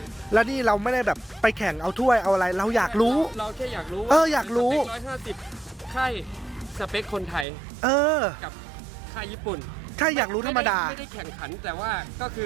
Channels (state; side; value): drops out; left; at 7.5 s